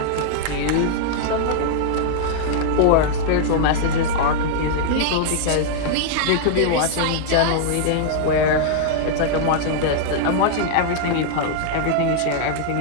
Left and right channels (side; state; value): both; different; correlation -0.01